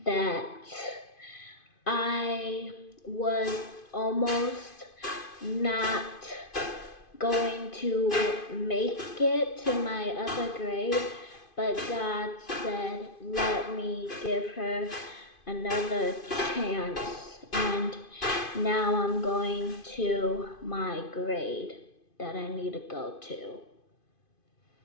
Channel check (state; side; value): late; right; 2.5 ms